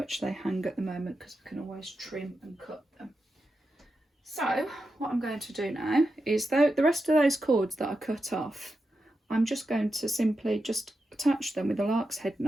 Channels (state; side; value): normal; both; correlation 0.88